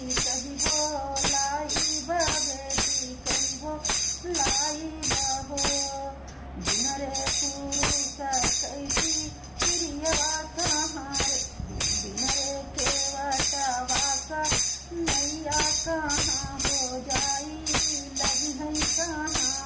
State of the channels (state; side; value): identical; both; correlation 1.00